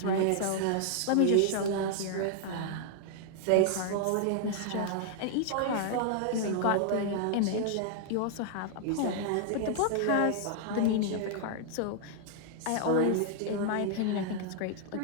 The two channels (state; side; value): different; both; correlation 0.00